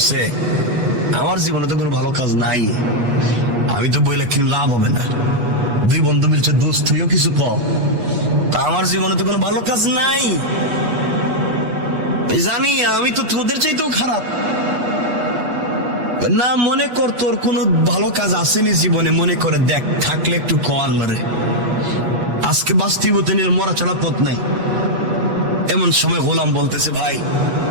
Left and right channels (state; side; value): late; left; 8.3 ms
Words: আমার জীবনে তো কোনো ভালো কাজ নাই, আমি তো বইলে কিন্তু লাভ হবে না। 2 বন্ধু মিলছে, দোস্ত তুইও কিছু কর, তা আমার জীবনে তো কোনো ভালো কাজ নাই, জানি আমি তো তোদের চাইতেও খারাপ। না মনে কর তোর কোনো ভালো কাজ আসেনি জীবনে, মনে করে দেখ, থাকলে একটু কর মারে, আজকে বাস্তবতা নিয়ে মরা ছাড়া পথ নাই। এমন সময় গোলাম বলতেছে, ভাই